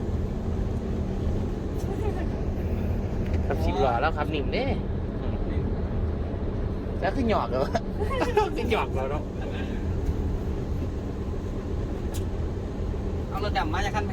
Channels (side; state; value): both; identical; correlation 1.00